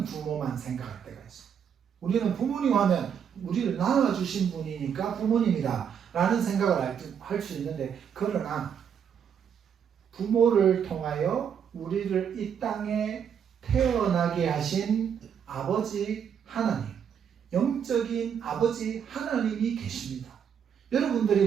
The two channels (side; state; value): left; quieter; 7.9 dB